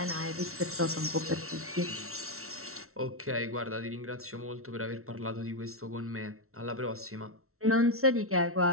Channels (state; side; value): late; left; 0.63 ms